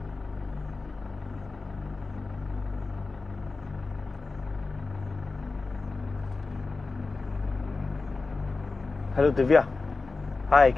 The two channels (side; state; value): right; quieter; 3.8 dB